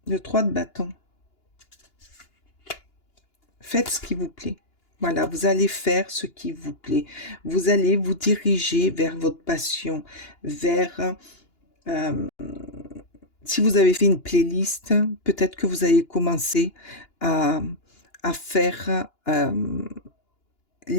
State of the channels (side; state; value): right; late; 2.9 ms